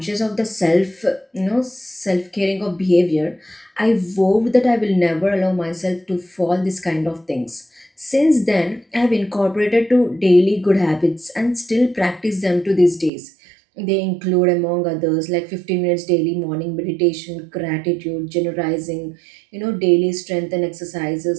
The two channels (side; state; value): left; drops out; at 13.1 s